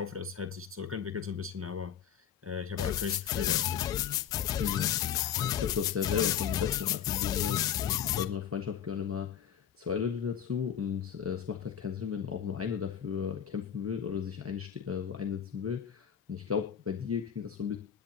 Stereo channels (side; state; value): right; quieter; 8.7 dB